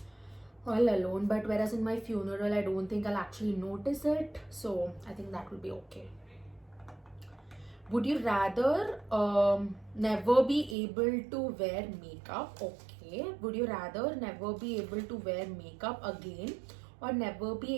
But whereas in my funeral, I don't think I'll actually notice it, so I think that will be okay. Would you rather never be able to wear makeup? Okay. Would you rather never be able to wear makeup again, or never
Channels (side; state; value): left; drops out; at 10.8 s